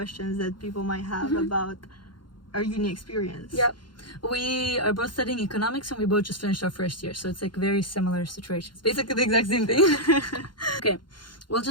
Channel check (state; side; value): late; right; 0.72 ms